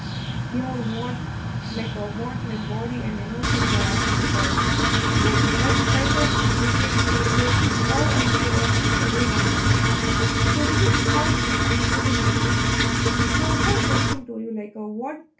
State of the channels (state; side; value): identical; both; correlation 1.00